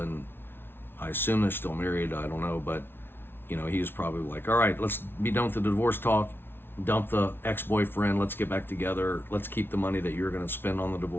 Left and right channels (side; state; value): right; late; 0.11 ms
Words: I assume they're still married, I don't know, but he was probably like, all right, let's be done with the divorce talk, dump the ex-boyfriend, let's get back together, let's keep the money that you're going to spend on the